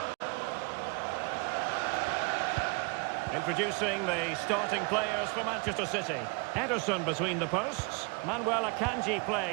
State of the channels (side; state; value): left; quieter; 30.8 dB